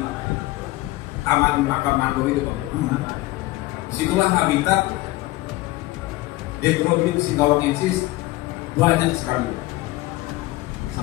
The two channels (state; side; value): quieter; right; 18.9 dB